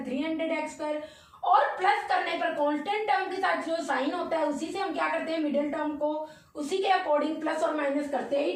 300x square और प्लस करने पर कांस्टेंट टर्म के साथ जो साइन होता है उसी से हम क्या करते हैं मिडिल टर्म को उसी के अकॉर्डिंग प्लस और माइनस करते हैं।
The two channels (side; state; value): both; identical; correlation 1.00